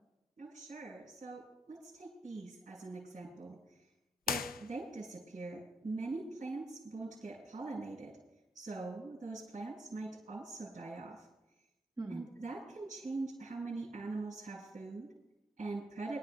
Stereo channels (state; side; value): normal; both; correlation 0.78